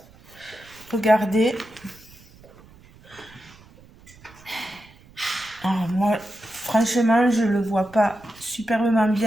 Regardez. Alors moi, franchement, je le vois pas superbement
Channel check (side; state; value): right; noise; rumble, 24 dB below the sound